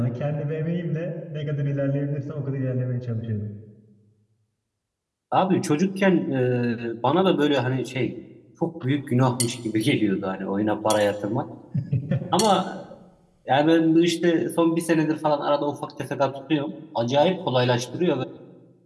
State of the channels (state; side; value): identical; both; correlation 1.00